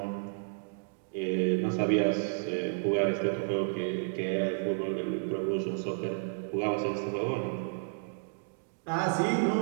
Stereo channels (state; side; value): silent; left; digital silence